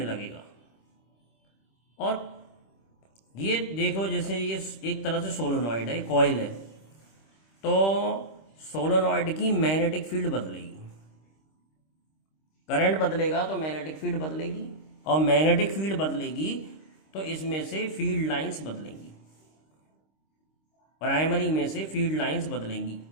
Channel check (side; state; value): right; late; 26 ms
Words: लगेगा। और ये देखो जैसे ये एक तरह से सोलेनॉइड है, कॉइल है, तो सोलेनॉइड की मैग्नेटिक फील्ड बदलेगी, करंट बदलेगा तो मैग्नेटिक फील्ड बदलेगी, और मैग्नेटिक फील्ड बदलेगी तो इसमें से फील्ड लाइंस बदलेंगी, प्राइमरी में से फील्ड लाइंस बदलेंगी,